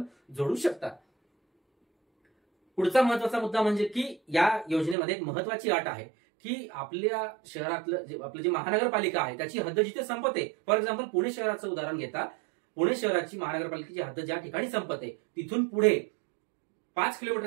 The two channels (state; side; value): drops out; left; at 5.0 s